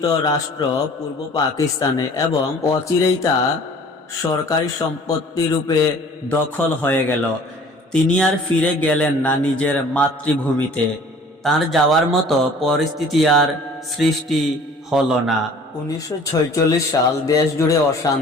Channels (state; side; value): normal; both; correlation 0.50